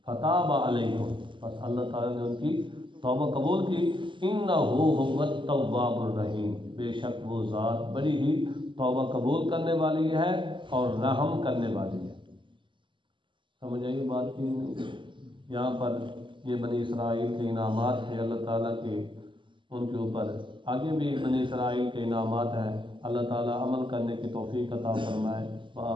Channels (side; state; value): left; late; 0.24 ms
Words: فتاب علیکم، بس اللہ تعالیٰ نے ان کی توبہ قبول کی۔ انہ هو التواب الرحیم، بے شک وہ ذات بڑی ہی توبہ قبول کرنے والی ہے اور رحم کرنے والی ہے۔ سمجھ آئی بات کی نہیں؟ یہاں پر یہ بنی اسرائیل کے انعامات تھے اللہ تعالیٰ کے ان کے اوپر، آگے بھی بنی اسرائیل کے انعامات ہیں۔ اللہ تعالیٰ عمل کرنے کی توفیق عطا فرمائے۔